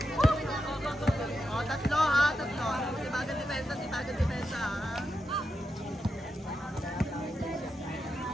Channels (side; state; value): both; normal; correlation 0.87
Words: Tatlo ha, tatlo. Tibagan depensa ha.